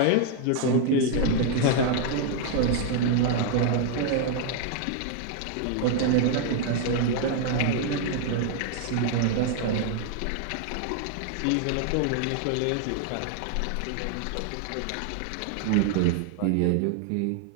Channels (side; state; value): both; different; correlation 0.00